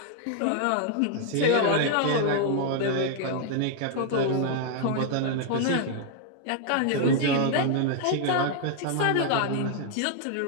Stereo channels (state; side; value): different; both; correlation 0.00